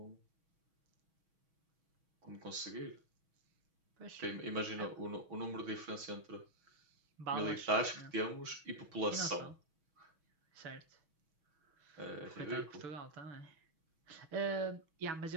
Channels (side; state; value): left; late; 6.3 ms